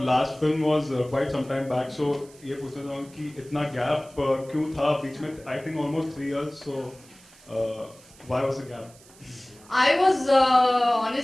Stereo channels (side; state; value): right; noise; hiss, 25 dB below the sound